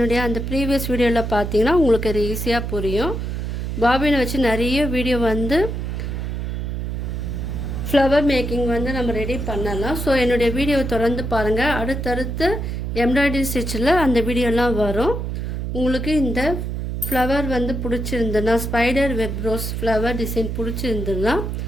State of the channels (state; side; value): noise; right; hum, 3 dB below the sound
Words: அந்த ப்ரீவியஸ் வீடியோவில் பார்த்தீங்கன்னா உங்களுக்கு அது ஈஸியாக புரியும். பாபினை வச்சு நிறைய வீடியோ வந்து ஃப்ளவர் மேக்கிங் வந்து நம்ம ரெடி பண்ணலாம். ஸோ என்னுடைய வீடியோவை தொடர்ந்து பாருங்கள். அடுத்தடுத்து எம்ப்ராய்டரி ஸ்டிச்சில் அந்த வீடியோலாம் வரும். உங்களுக்கு இந்த ஃப்ளவர் வந்து பிடிச்சிருந்துன்னா, spider web rose flower design பிடிச்சிருந்துன்னா